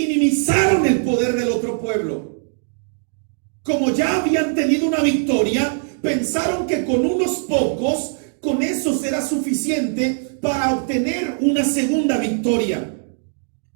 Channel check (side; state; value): left; silent; digital silence